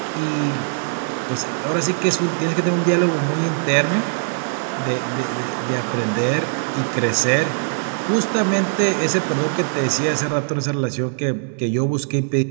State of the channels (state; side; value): silent; left; digital silence